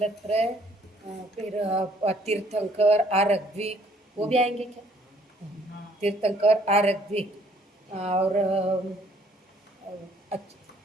फिर तीर्थंकर, आरग्विक, वो भी आएंगे क्या? तीर्थंकर, आरग्विक और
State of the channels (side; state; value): both; normal; correlation 0.62